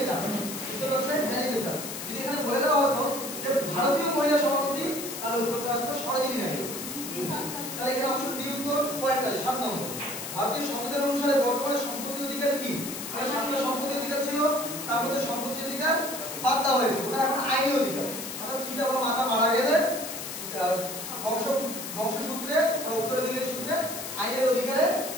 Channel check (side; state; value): left; noise; hiss, 7 dB below the sound